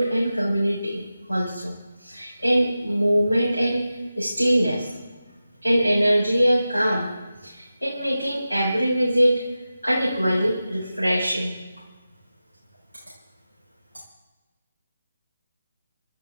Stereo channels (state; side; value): inverted; both; correlation -0.93